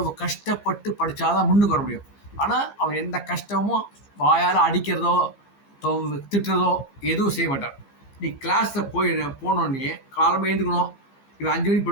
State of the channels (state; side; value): late; right; 15 ms